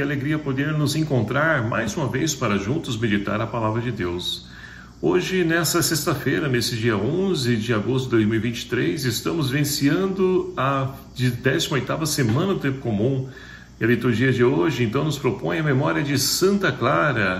alegria poder nos encontrar mais uma vez para juntos meditar a Palavra de Deus. Hoje, nessa sexta-feira, nesse dia 11 de agosto de 2023, estamos vivenciando a 18ª semana do Tempo Comum. E a liturgia de hoje, então, nos propõe a memória de Santa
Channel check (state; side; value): identical; both; correlation 1.00